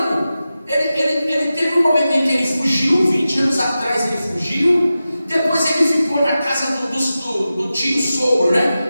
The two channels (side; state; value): both; inverted; correlation -0.93